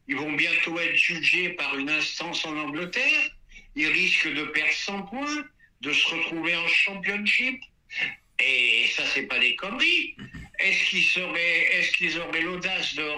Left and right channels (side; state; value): both; identical; correlation 1.00